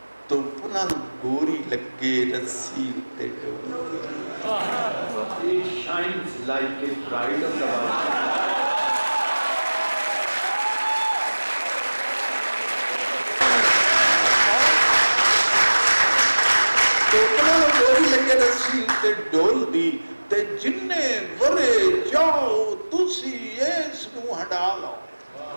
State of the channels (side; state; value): both; inverted; correlation -1.00